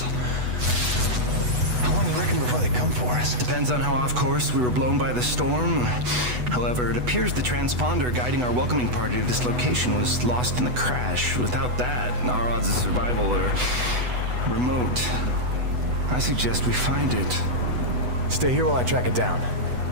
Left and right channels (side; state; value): left; late; 8.1 ms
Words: How long you reckon before they come for us? Depends on how off course we were blown by the storm. However, it appears the transponder guiding our welcoming party to this location was lost in the crash. Without that, our odds of survival are remote. I suggest we find it. Stay here while I track it down.